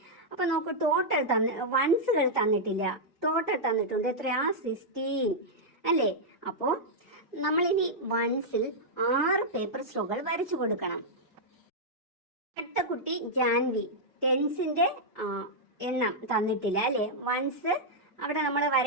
അപ്പൊ നോക്കൂ, ടോട്ടൽ വൺസുകൾ തന്നിട്ടില്ല, ടോട്ടൽ തന്നിട്ടുണ്ട് എത്രയാ, 16 അല്ലേ. അപ്പോ നമ്മളിനി വൺസിൽ 6 പേപ്പർ സ്ട്രോകൾ വരച്ചു കൊടുക്കണം. അടുത്ത കുട്ടി ജാൻവി. ടെൻസിന്റെ എണ്ണം തന്നിട്ടില്ല അല്ലേ, വൺസ് അവിടെ നമ്മൾ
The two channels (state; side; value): normal; both; correlation -0.06